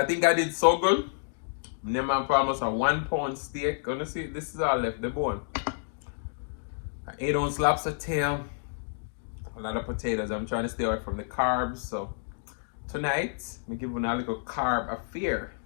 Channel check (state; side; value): silent; right; digital silence